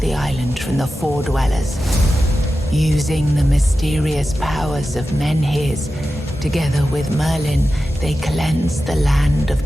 island from the Four Dwellers. Using the mysterious powers of Menhirs, together with Merlin, they cleansed the land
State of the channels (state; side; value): normal; both; correlation 0.93